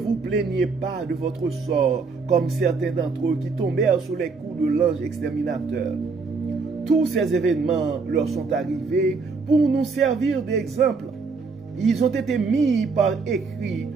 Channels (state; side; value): quieter; left; 4.5 dB